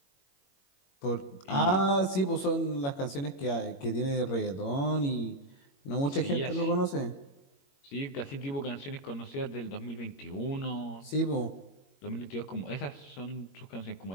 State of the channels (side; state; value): right; late; 21 ms